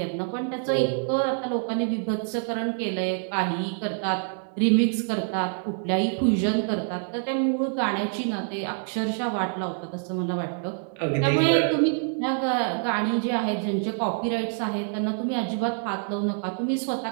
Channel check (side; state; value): left; silent; 60 dB below the other